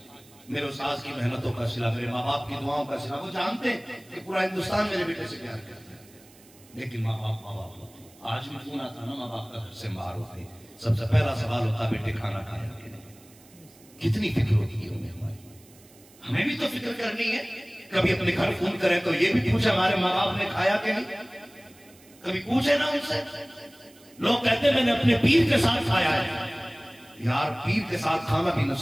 میرے استاذ کی محنتوں کا صلہ، میرے ماں باپ کی دعاؤں کا صلہ. وہ جانتے ہیں کہ پورا ہندوستان میرے بیٹے سے پیار کرتا ہے، لیکن ماں باپ ہوتے. آج بھی فون آتا نا ماں باپ کا گھر سے باہر ہوتے، سب سے پہلا سوال ہوتا بیٹے کھانا کھایا کہ نہیں. کتنی فکر ہوتی ہے انہیں ہماری. ہمیں بھی تو فکر کرنی ہے. کبھی اپنے گھر فون کریں تو یہ بھی پوچھے ہمارے ماں باپ نے کھایا کہ نہیں. کبھی پوچھے نا ان سے. لوگ کہتے ہیں میں نے اپنے پیر کے ساتھ کھایا ہے. یار پیر کے ساتھ کھانا بھی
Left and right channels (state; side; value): noise; right; hiss, 26 dB below the sound